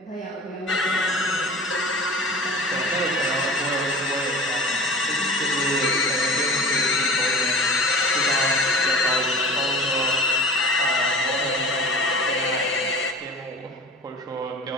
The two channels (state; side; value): normal; both; correlation 0.38